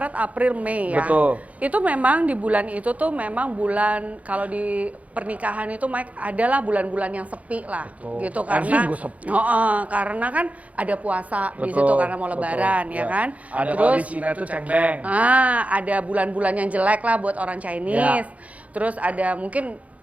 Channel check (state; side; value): late; left; 0.068 ms